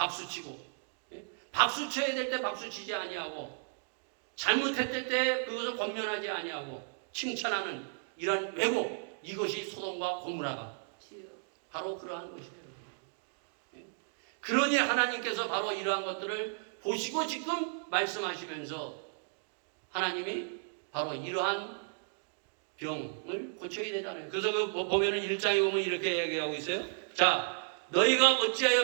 네? 박수 쳐야 될 때 박수 치지 아니하고 잘못했을 때 그것을 권면하지 아니하고 칭찬하는 이런 왜곡, 이것이 소돔과 고모라가 바로 그러한 것이에요. 그러니 하나님께서 바로 이러한 것들을 보시고 지금 말씀하시면서 하나님이 바로 이러한 병을 고쳐야 되잖아요. 그래서 그 보면은 1장에 보면 이렇게 얘기하고 있어요. 자, 너희가 어찌하여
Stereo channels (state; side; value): silent; left; digital silence